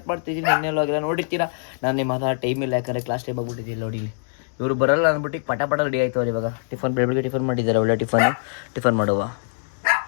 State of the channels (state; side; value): silent; right; digital silence